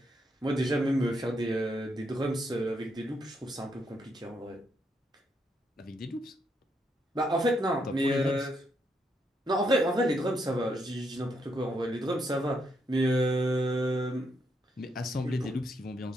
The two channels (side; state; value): both; normal; correlation 0.77